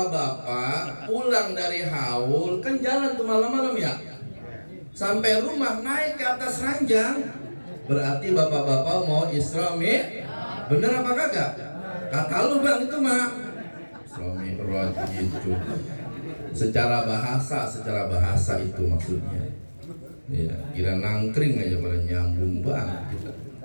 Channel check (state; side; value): inverted; both; correlation -1.00